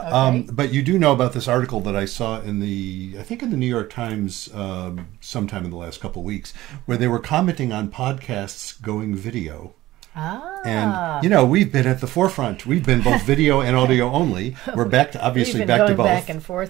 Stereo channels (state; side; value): quieter; left; 16.5 dB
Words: okay. But you do know about this article that I saw in I think in the New York Times sometime in the last couple of weeks, where they were commenting on podcasts going video. And, you know, we've been at the forefront. We've been both video and audio only. We're back to, obviously, back to both. We've been going back and